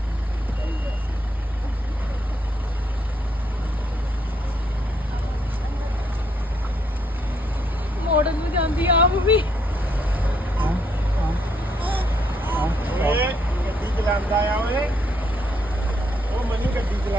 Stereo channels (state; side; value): normal; both; correlation 0.73